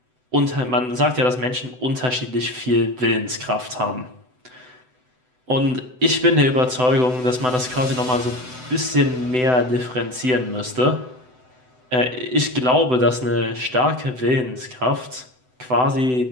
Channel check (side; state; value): left; late; 7.9 ms